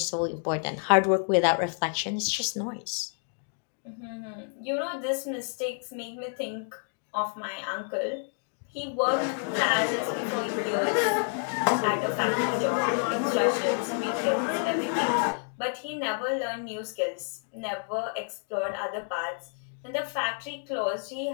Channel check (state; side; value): silent; right; 58 dB below the other